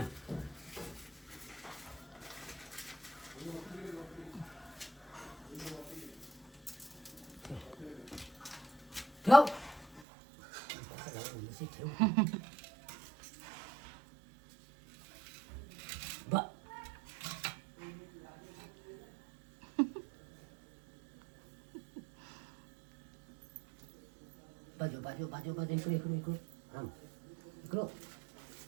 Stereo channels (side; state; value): left; drops out; at 10.1 s